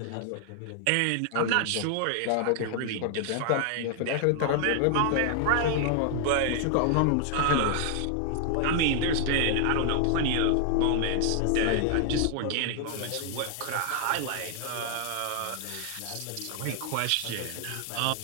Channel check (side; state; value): both; different; correlation 0.00